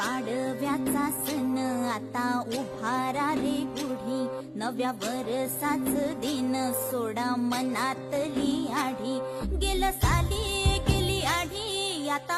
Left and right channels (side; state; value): both; identical; correlation 1.00